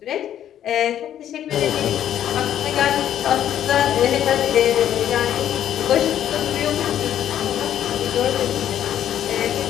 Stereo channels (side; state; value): right; quieter; 10.7 dB